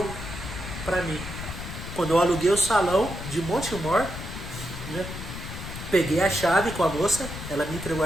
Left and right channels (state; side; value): noise; left; rumble, 9 dB below the sound